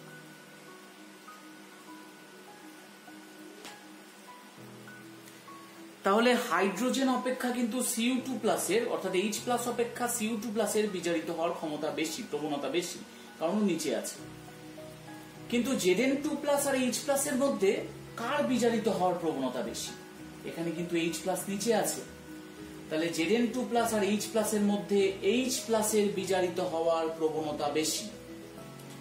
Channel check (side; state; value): both; identical; correlation 1.00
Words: তাহলে হাইড্রোজেন অপেক্ষা কিন্তু Cu2 প্লাসের, অর্থাৎ H প্লাস অপেক্ষা Cu2 প্লাসের বিজারিত হওয়ার ক্ষমতা বেশি, প্রবণতা বেশি, কারণ নিচে আছে। কিন্তু Zn2 প্লাস আর H প্লাসের মধ্যে কার বিজারিত হওয়ার প্রবণতা বেশি? এখানে কিন্তু H প্লাস নিচে আছে, তাহলে Zn2 প্লাস আর H প্লাসের মধ্যে H প্লাসের বিজারিত হওয়ার প্রবণতা বেশি।